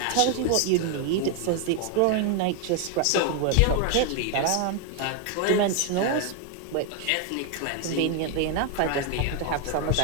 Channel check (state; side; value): different; both; correlation 0.01